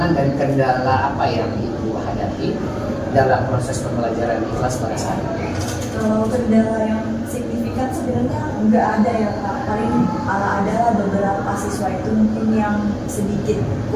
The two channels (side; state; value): both; identical; correlation 1.00